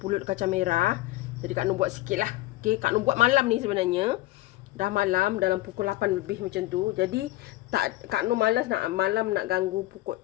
kacang merah. Jadi Kak Nur buat sikit lah. Okey, Kak Nur buat malam ni sebenarnya. Dah malam, dalam pukul 8 lebih macam tu. Jadi Kak Nur malas nak malam nak ganggu pukul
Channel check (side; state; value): right; quieter; 18.1 dB